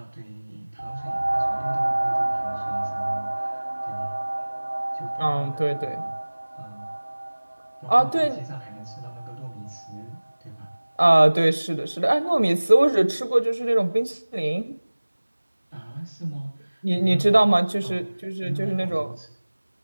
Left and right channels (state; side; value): inverted; both; correlation -1.00